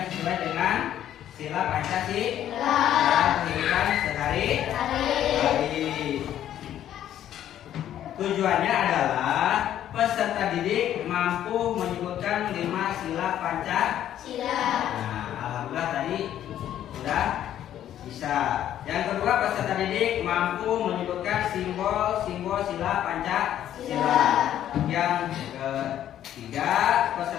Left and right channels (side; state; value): right; quieter; 11.3 dB